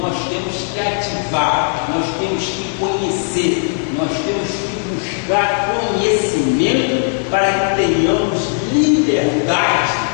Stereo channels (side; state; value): right; silent; 57 dB below the other